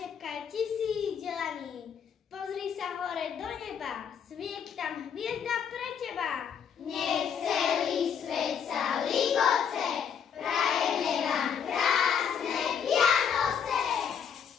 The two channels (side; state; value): right; quieter; 7.5 dB